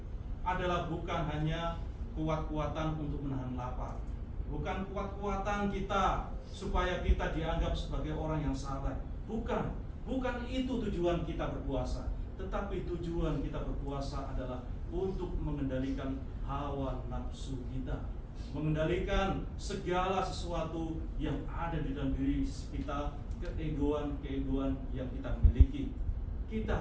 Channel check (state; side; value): identical; both; correlation 1.00